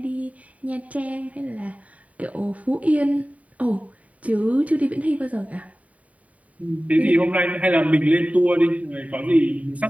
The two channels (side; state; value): left; late; 0.069 ms